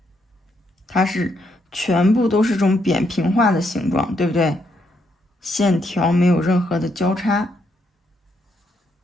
它是全部都是这种扁平化的形状，对不对？线条没有任何的交叉。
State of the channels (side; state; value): both; normal; correlation 0.76